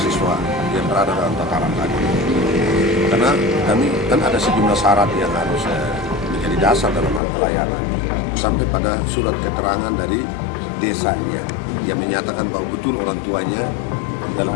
yang berada dalam tataran tadi. Karena kami kan ada sejumlah syarat yang harus menjadi dasar dalam hal pelayanan. Sampai pada surat keterangan dari desanya yang menyatakan bahwa betul orang tuanya dalam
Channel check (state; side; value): drops out; right; at 7.2 s